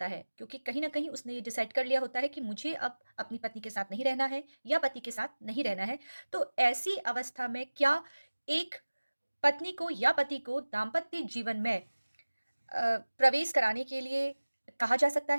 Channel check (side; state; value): both; inverted; correlation -1.00